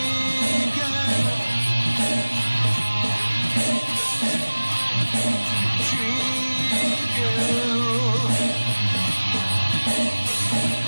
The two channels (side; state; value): both; inverted; correlation -1.00